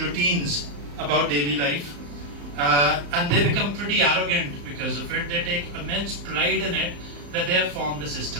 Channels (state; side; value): late; left; 35 ms